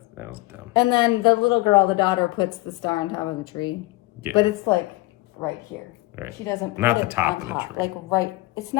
that was dumb. And then the little girl, the daughter, puts the star on top of the tree. Yeah. But it's like right here. Right. She doesn't Not put the it top on of the tree. Like right, it's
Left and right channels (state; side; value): quieter; right; 20.7 dB